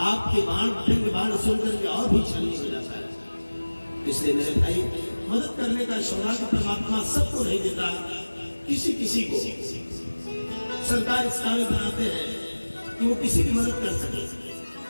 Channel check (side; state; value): both; inverted; correlation -1.00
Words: आपके बाण सुनकर के और भी छलनी हो जाता है। इसलिए मेरे भाई, मदद करने का सौभाग्य परमात्मा सबको नहीं देता, किसी किसी को सरकार इस काबिल बनाते हैं कि वो किसी की मदद कर सके।